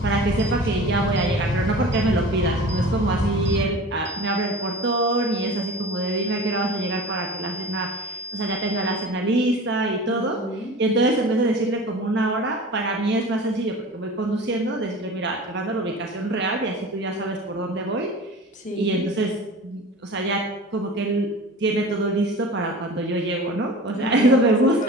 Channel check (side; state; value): both; normal; correlation 0.37